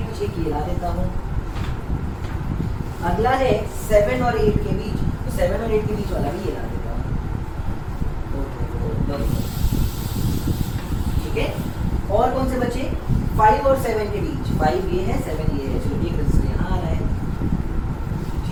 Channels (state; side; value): identical; both; correlation 1.00